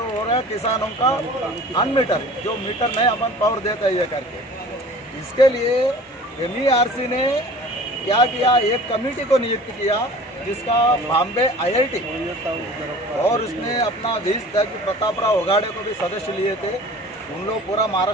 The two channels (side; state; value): both; normal; correlation 0.44